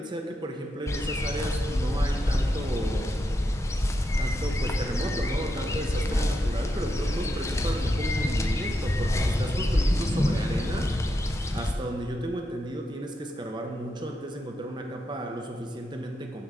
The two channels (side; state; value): both; normal; correlation 0.84